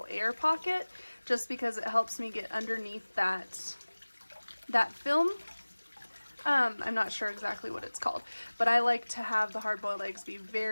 air pocket, just because it helps me get underneath that film. I'm not sure exactly what it's called, but I like to have the hard-boiled eggs be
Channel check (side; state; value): both; inverted; correlation -1.00